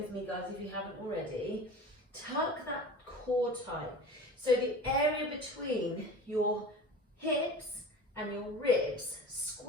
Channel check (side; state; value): both; normal; correlation 0.36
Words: me, guys, if you haven't already. Tuck that core tight. So the area between your hips and your ribs,